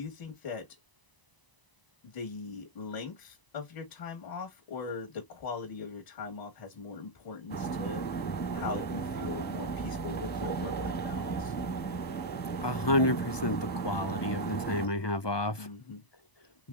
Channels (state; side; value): late; right; 1.0 ms